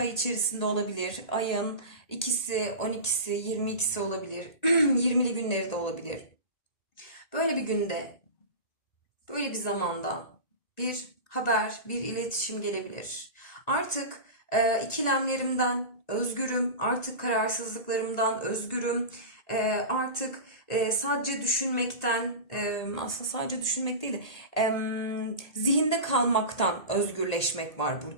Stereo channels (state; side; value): late; right; 1.8 ms